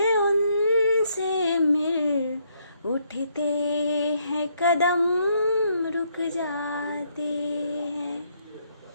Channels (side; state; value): both; inverted; correlation -0.72